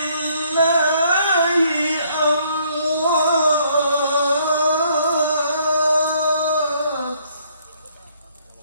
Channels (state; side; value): inverted; both; correlation -0.66